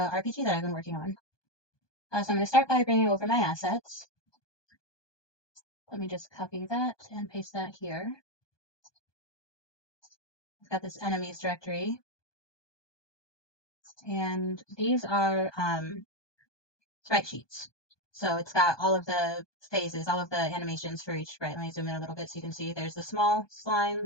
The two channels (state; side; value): late; right; 1.2 ms